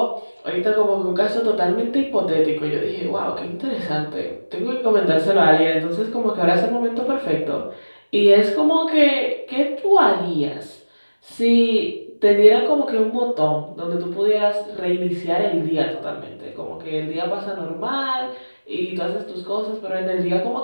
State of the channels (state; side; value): inverted; both; correlation -1.00